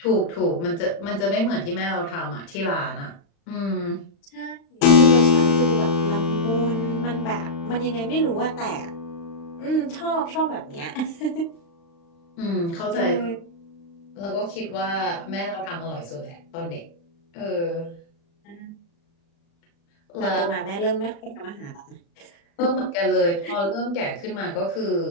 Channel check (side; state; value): right; late; 35 ms